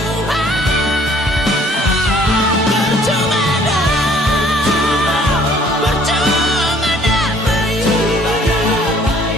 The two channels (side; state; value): both; normal; correlation 0.58